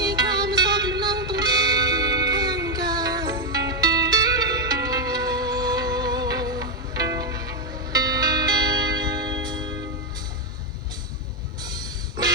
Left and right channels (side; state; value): both; normal; correlation 0.03